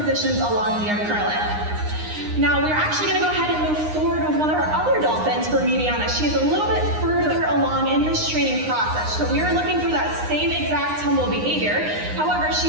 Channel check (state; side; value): late; left; 9.7 ms